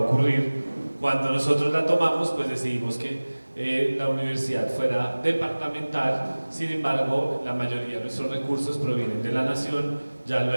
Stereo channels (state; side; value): inverted; both; correlation -1.00